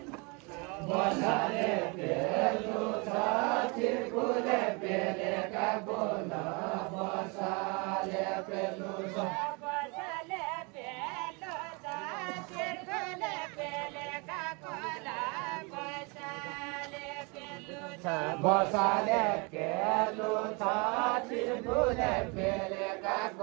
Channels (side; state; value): left; quieter; 30.6 dB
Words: बसाले पेलु छ किरकुले पेले काकोल बसाले पेलु छ बसाले पेलु छ चिरकुले पेले